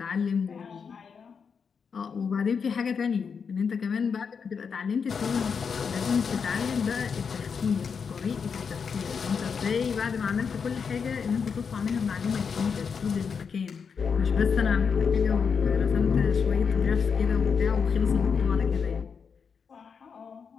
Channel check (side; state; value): right; quieter; 6.1 dB